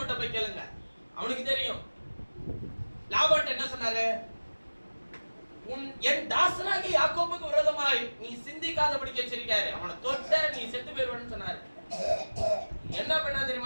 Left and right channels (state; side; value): inverted; both; correlation -1.00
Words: போய் கேளுங்க, அவனுக்கு தெரியும். லாபான் என்ன சொன்னாரு? என் தாசனாகி யாக்கோபுக்கு விரோதமாய் நீ சிந்திக்காதபடி எச்சரிக்காரு, அவனை தொட்ட நீ செத்து போயிருவன்னு சொன்னாரு. என்ன பண்ணா